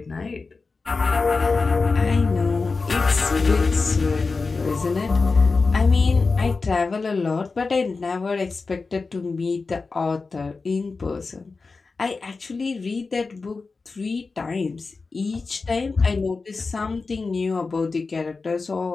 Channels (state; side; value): quieter; right; 4.2 dB